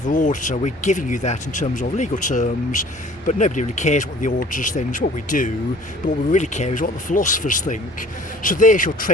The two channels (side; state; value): both; normal; correlation 0.51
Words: auditor, we're giving you that in terms of legal terms, but nobody really cares what the auditors think. It's what we do, but what we really care is what the philosophers think. So there's your